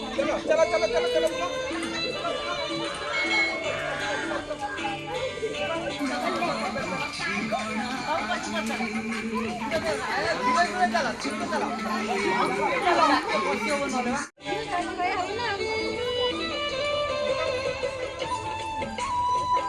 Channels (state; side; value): identical; both; correlation 1.00